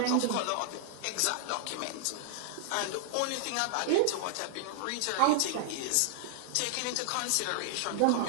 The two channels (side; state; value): both; different; correlation -0.01